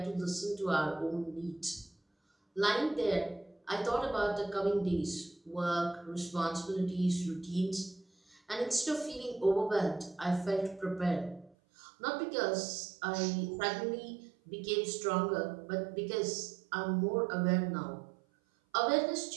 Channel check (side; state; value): left; drops out; at 11.6 s